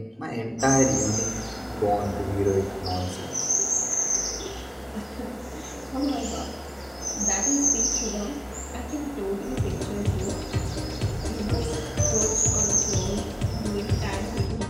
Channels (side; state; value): both; identical; correlation 1.00